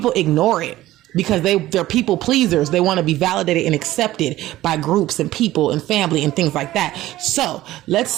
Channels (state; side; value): quieter; left; 15.6 dB